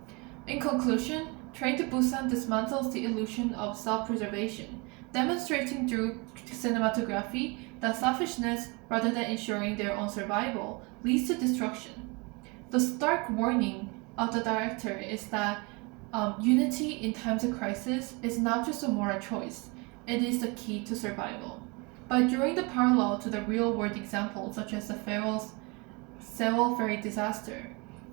In conclusion, Train to Busan dismantles the illusion of self-preservation, demonstrating through cinematography that selfishness, rather than ensuring their own survival, leads to destruction. The stark warning of the director is that unity in times of crisis is not just a moral choice, it is the key to survival. By drawing the parallel to the real-world examples, such as the Sewol ferry disaster,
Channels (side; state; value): left; quieter; 28.7 dB